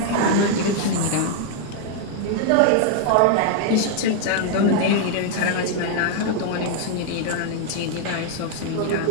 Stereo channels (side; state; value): both; different; correlation 0.00